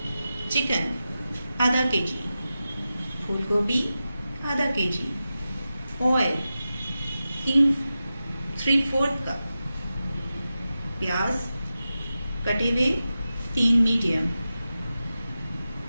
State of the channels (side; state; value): both; inverted; correlation -0.93